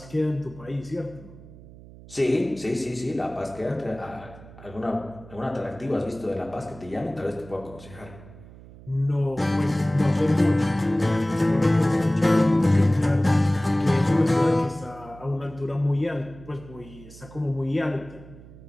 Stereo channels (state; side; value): noise; right; hum, 19 dB below the sound